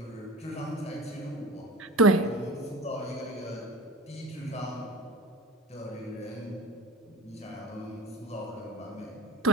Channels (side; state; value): both; normal; correlation 0.35